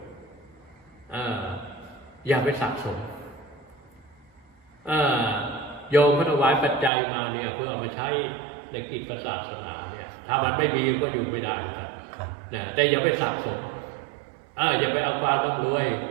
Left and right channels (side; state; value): left; drops out; at 6.9 s